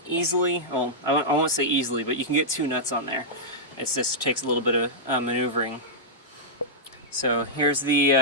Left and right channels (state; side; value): normal; both; correlation -0.11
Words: easily. Well, I won't say easily, but you can get two nuts on there. It just takes a little bit of maneuvering. So here's